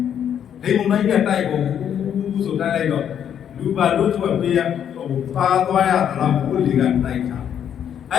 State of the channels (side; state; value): right; quieter; 9.0 dB